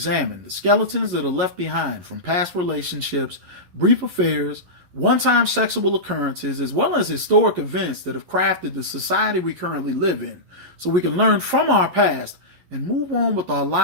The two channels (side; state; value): left; late; 11 ms